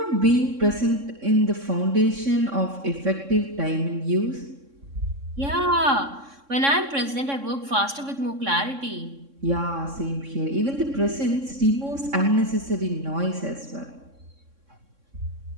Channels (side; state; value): left; late; 3.6 ms